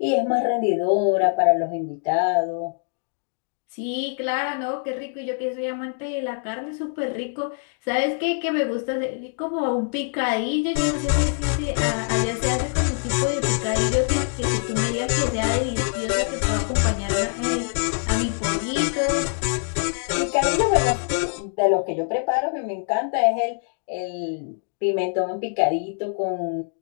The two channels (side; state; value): right; silent; 60 dB below the other